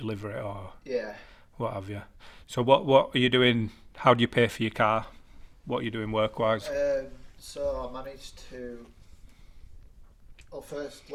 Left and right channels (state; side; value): identical; both; correlation 1.00